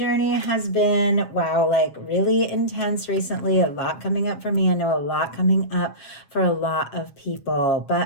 has been, wow, like really intense recently. A lot coming up for me. I know a lot coming up for a lot of people.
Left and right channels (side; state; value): right; late; 7.4 ms